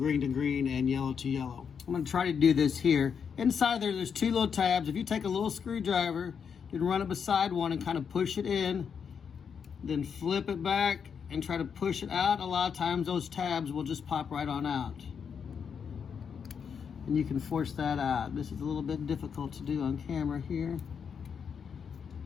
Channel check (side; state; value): right; quieter; 6.8 dB